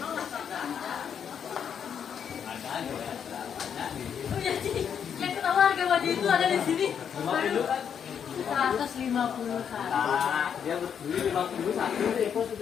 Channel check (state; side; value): quieter; right; 7.9 dB